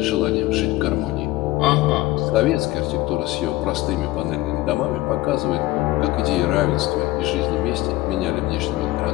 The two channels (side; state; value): right; quieter; 17.8 dB